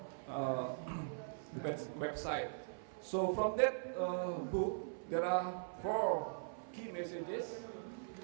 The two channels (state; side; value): silent; left; 50 dB below the other